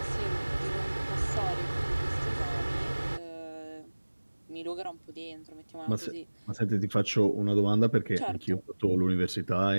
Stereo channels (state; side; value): inverted; both; correlation -1.00